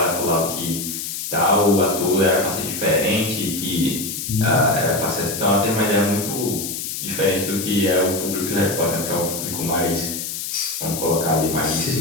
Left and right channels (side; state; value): left; noise; hiss, 5 dB below the sound